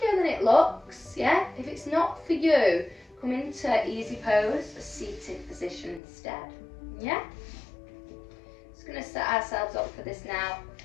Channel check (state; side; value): drops out; right; at 6.0 s